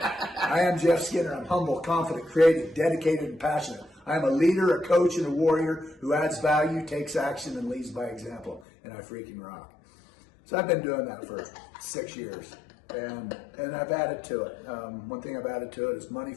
am Jeff Skinner. I'm humble, confident, creative, dedicated, and passionate. I am a leader, a coach, and a warrior who adds value, takes action, and leads by example. And I freaking rock. So I've been doing that for 6 years. And I've added to it. One thing I've added to it is money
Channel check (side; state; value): right; drops out; at 8.7 s